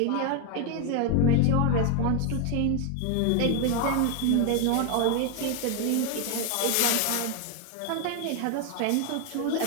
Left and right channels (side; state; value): both; different; correlation 0.01